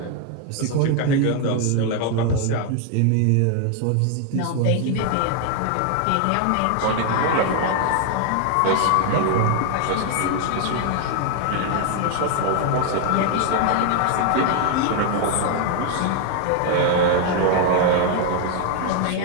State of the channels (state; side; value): different; both; correlation 0.00